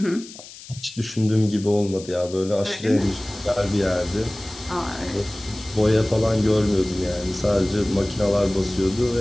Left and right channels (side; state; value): left; noise; hiss, 17 dB below the sound